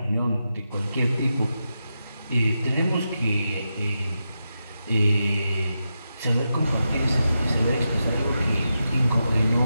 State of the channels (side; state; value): both; inverted; correlation -0.88